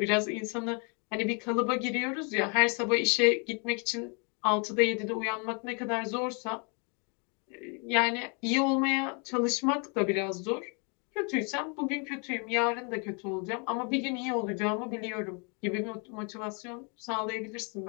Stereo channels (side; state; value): right; quieter; 35.9 dB